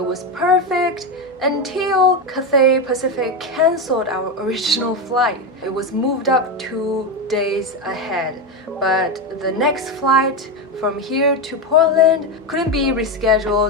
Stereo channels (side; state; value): both; normal; correlation 0.12